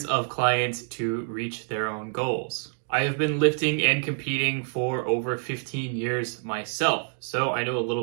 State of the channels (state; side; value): silent; left; digital silence